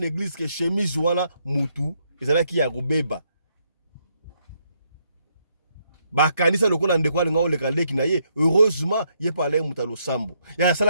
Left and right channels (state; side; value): inverted; both; correlation -0.74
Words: que chemise wana mutu ezalaki ya robeba bakanisa lokola ndeko alinga oleka leki na ye heureusement ye pale mutalo sambo ya